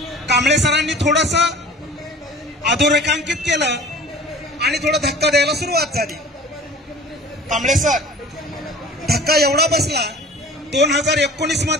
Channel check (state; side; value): normal; both; correlation 0.44